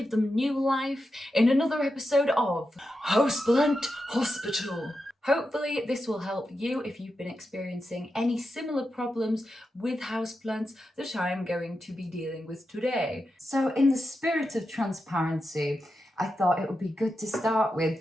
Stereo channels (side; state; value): both; normal; correlation 0.88